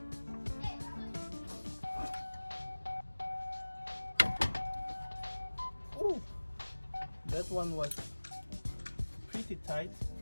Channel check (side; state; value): both; inverted; correlation -1.00